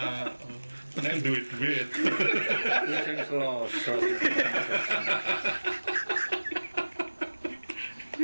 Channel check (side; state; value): both; inverted; correlation -1.00